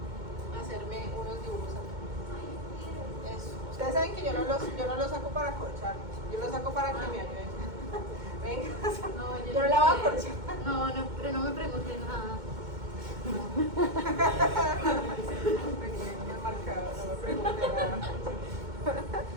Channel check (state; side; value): late; left; 2.2 ms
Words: a hacerme unos dibujos acá? Eso. Ustedes saben que yo no los saco para acorchar, yo los saco para que me ayuden. Venga, No, yo no la voy a acorchar. No, pero no me pregunten nada. Venía el marcador, no me pregunte nada.